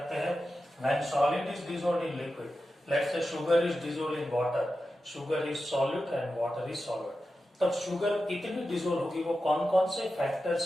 हैं when solid is dissolved in liquid, let's say sugar is dissolved in water, sugar is solute and water is solvent, तब शुगर कितनी डिसॉल्व होगी वो कौन कौन से फैक्टर्स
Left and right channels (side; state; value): both; normal; correlation 0.92